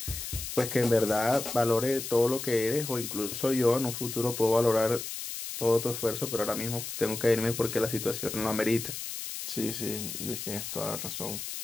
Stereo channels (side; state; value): left; noise; hiss, 7 dB below the sound